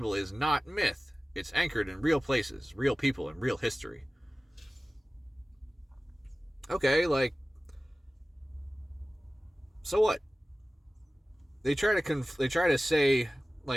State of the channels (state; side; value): normal; both; correlation 0.97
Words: is not myth. It's anchored in real places, real people, and real history. Okay, like, so what? They try to say,